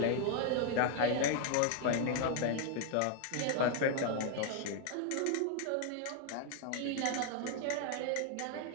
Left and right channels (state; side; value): different; both; correlation 0.00